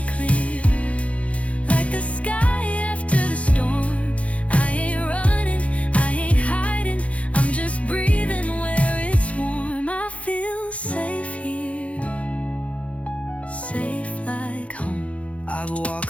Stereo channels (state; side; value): late; right; 0.064 ms